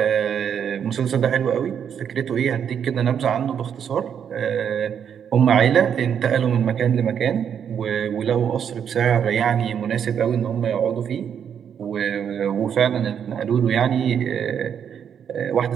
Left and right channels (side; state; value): left; quieter; 8.1 dB